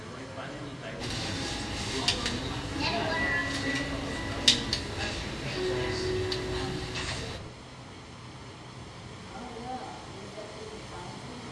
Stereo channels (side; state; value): both; identical; correlation 1.00